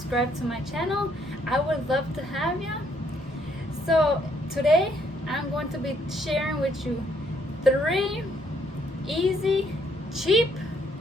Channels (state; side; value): normal; both; correlation 0.69